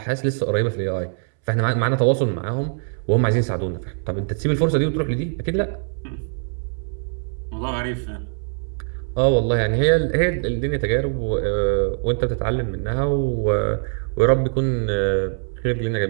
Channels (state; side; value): silent; left; 64 dB below the other